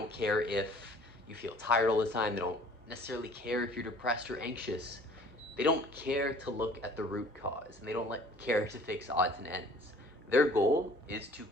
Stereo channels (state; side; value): normal; both; correlation 0.52